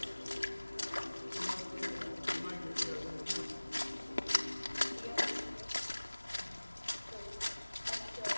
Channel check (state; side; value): inverted; both; correlation -1.00